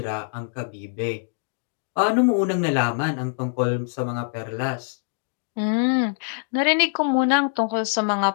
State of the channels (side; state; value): right; silent; digital silence